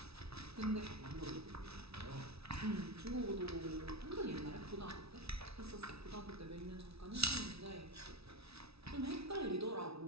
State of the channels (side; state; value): left; late; 0.78 ms